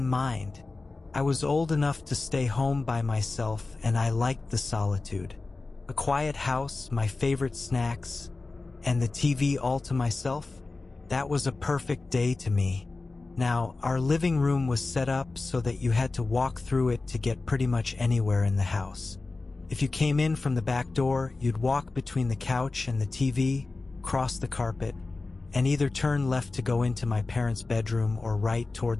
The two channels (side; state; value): right; quieter; 3.5 dB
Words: mind. I was old enough to stay home by myself, and I liked the solitude. A quiet house, my favorite snacks, and the TV all to myself. That was a perfect day to me. Now, our living room was set up so that you had to walk through it to get pretty much anywhere in the house. If you came in from the back door, you'd walk between the couch and the TV, cross the carpet, and either turn left to go into my parents' bedroom or right toward